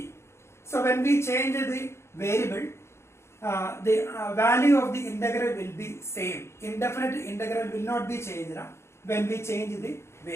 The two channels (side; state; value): right; late; 0.13 ms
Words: So when we change the variable, the value of the integral will be same. Indefinite integral will not be changed when we change the